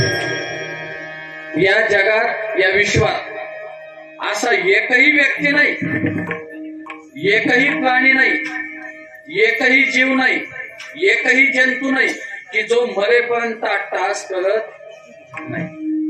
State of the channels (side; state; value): both; identical; correlation 1.00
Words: या जगात या विश्वात असा एकही व्यक्ती नाही, एकही प्राणी नाही, एकही जीव नाही, एकही जंतू नाही की जो मरेपर्यंत 8 तास करत नाही.